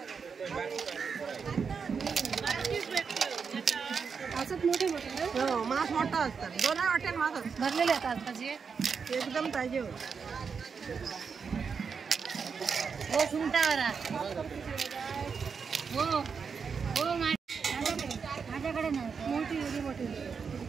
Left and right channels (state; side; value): quieter; left; 5.9 dB